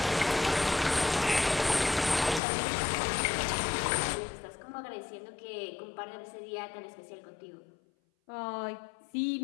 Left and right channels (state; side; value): drops out; right; at 2.4 s